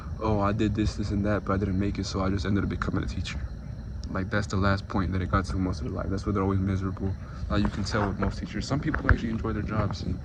oh, I did this and that, but I didn't make it, so I just ended up becoming a teacher. like that's the last point that it got to most of their life. That's where they're always miserable. Like you can tell with most teachers. Some people actually enjoy their jobs, and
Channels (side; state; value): both; identical; correlation 1.00